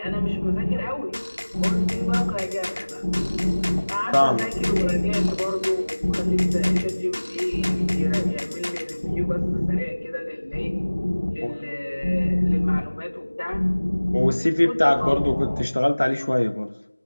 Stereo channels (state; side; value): inverted; both; correlation -1.00